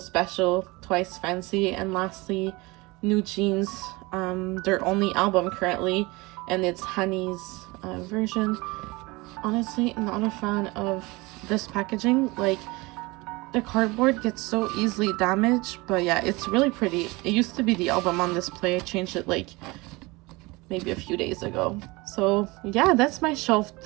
Twice Fancy, and lastly New Jeans, their only album currently, and it's Honey's version. Honestly, not a fan of this packaging. Like, the cardboard gets so easily damaged, but yeah, it's really pretty. It used to be the album on display. I changed it like maybe a few days ago. So yeah, that's my shelf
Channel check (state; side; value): quieter; left; 23.7 dB